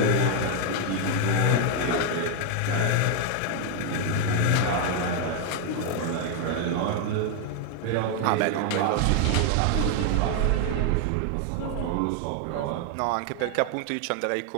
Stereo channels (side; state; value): both; different; correlation 0.00